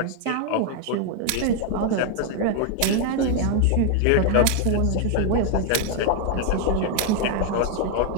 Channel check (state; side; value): different; both; correlation 0.00